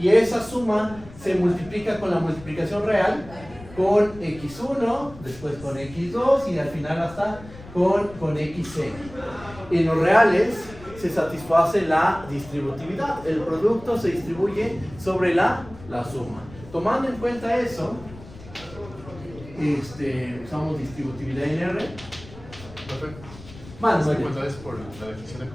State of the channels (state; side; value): noise; left; rumble, 18 dB below the sound